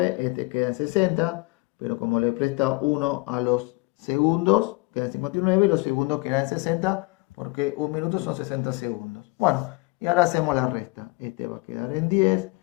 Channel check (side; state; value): right; quieter; 26.3 dB